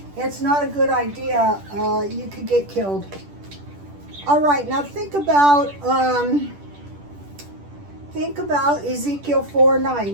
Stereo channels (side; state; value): left; late; 10 ms